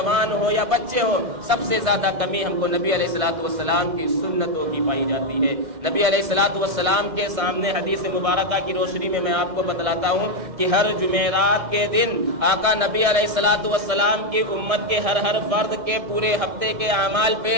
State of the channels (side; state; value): left; late; 1.6 ms